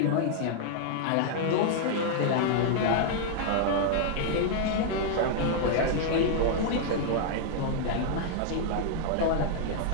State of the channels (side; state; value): both; different; correlation -0.01